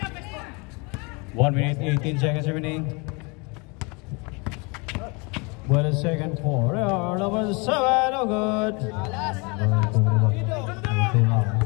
1 minute 18 seconds remaining. What a second for number 7, no good.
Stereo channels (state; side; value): quieter; right; 29.7 dB